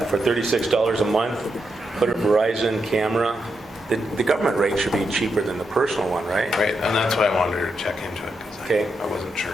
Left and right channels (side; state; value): both; normal; correlation 0.84